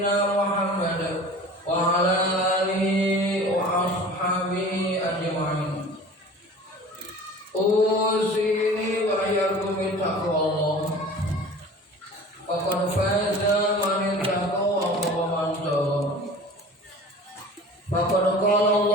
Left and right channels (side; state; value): both; normal; correlation 0.41